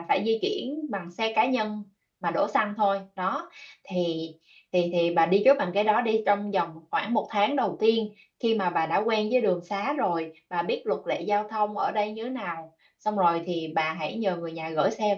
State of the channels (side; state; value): both; identical; correlation 1.00